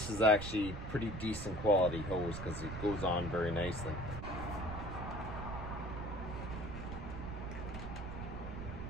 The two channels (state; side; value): noise; right; rumble, 7 dB below the sound